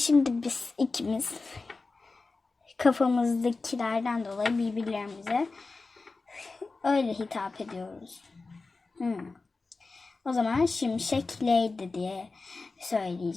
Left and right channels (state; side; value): quieter; right; 3.8 dB